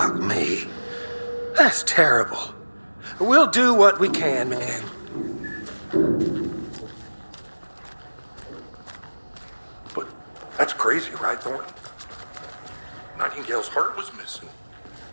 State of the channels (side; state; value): both; inverted; correlation -1.00